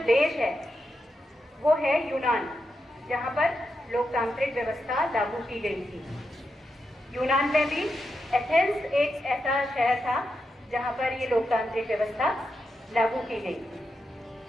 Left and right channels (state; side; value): normal; both; correlation 0.86